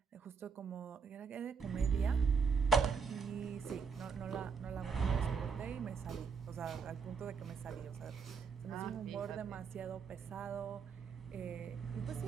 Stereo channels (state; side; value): quieter; left; 5.7 dB